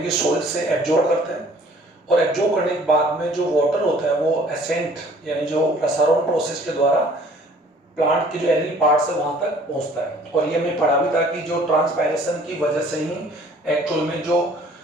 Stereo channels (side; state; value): both; normal; correlation 0.54